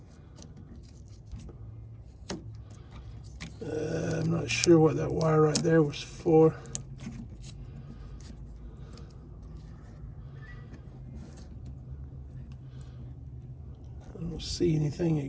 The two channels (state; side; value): identical; both; correlation 1.00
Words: I'm not sure what that wire right there was for. I don't see anything